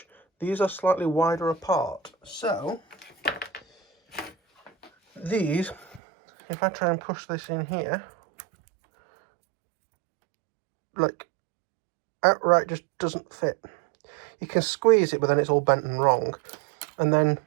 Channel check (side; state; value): left; drops out; at 6.0 s